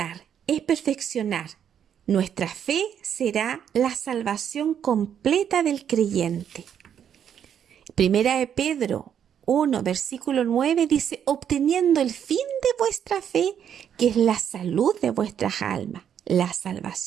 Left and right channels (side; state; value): left; quieter; 8.8 dB